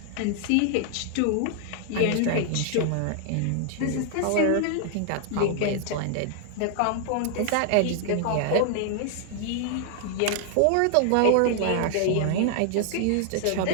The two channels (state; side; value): different; both; correlation 0.00